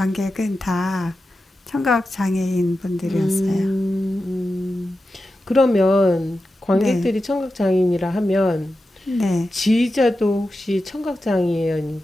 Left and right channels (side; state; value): both; normal; correlation 0.91